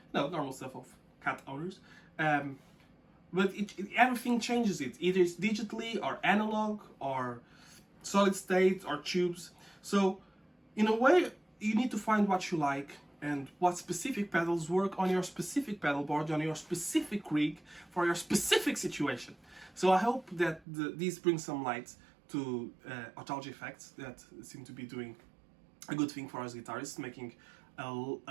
No, normal stuff of cat owners. But everything changes it. Either it's digitally or analog or solid state or tubes. So in a way, you need to find what you like and what specific pedals work on your specific pedal board, on your specific rig, for your specific situation. So I hope that these bring some light to Otalgia effects that seem to be doing a good thing for us guitarists, making a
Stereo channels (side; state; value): left; drops out; at 20.6 s